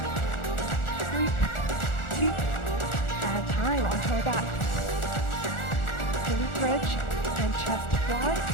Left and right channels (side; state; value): right; late; 1.4 ms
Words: 3, 2, and time. Onto our back. Glute bridge and chest fly.